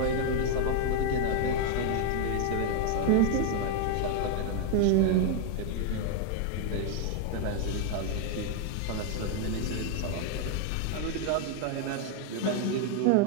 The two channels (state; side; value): different; both; correlation 0.01